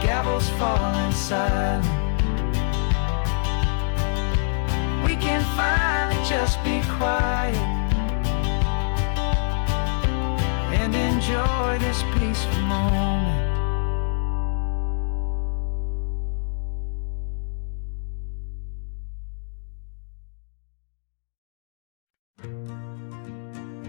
gavel's falling silent. We can finally just be quiet and enjoy this peaceful moment.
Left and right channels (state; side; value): silent; right; digital silence